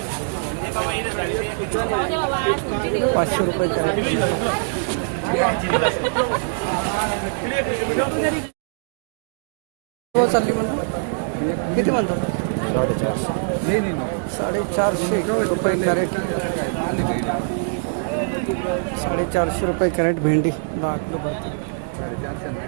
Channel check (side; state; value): left; silent; digital silence